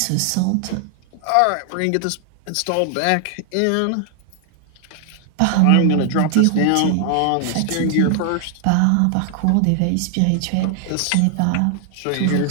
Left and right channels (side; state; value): both; different; correlation 0.00